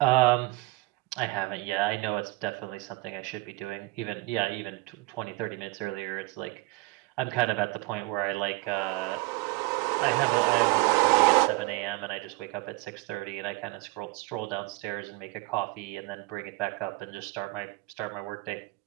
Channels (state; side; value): quieter; left; 22.5 dB